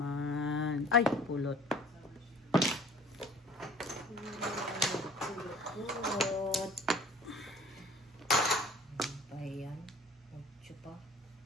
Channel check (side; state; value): both; normal; correlation 0.48